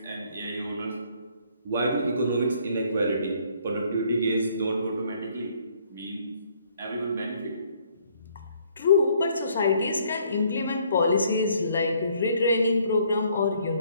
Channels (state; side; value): inverted; both; correlation -0.64